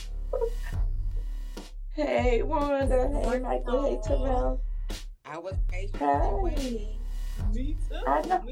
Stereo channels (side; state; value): both; identical; correlation 1.00